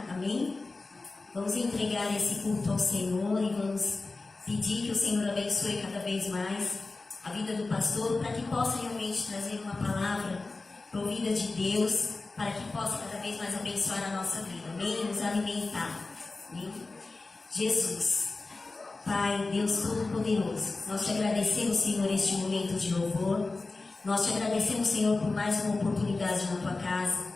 amém? Vamos entregar esse culto ao Senhor e vamos pedir que o Senhor abençoe cada vez mais a vida do pastor, para que possa realmente trazer uma palavra provida de Deus, para que possa cada vez mais abençoar a nossa vida, amém? Nos alimentar, amém? Jesus, Pai, Deus Todo-Poderoso, nós te agradecemos, Senhor, este momento de louvor. Nós te agradecemos, Senhor, por mais uma oportunidade na tua casa.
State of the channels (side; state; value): right; quieter; 3.5 dB